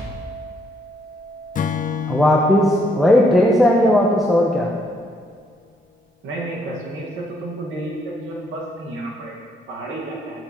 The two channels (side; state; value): both; normal; correlation 0.72